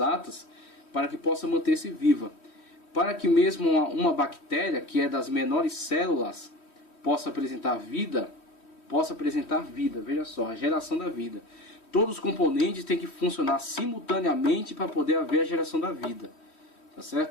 para que possa manter-se viva. Para que mesmo uma bactéria, que é das menores células, possa apresentar vida, veja só, a geração da vida. Todos os componentes têm que funcionar simultaneamente para poder haver a geração da vida, tá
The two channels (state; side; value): late; right; 3.1 ms